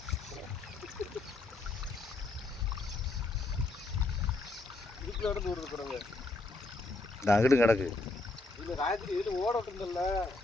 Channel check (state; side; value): quieter; right; 3.2 dB